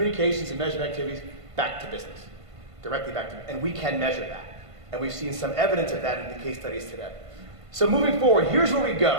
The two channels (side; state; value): left; late; 1.5 ms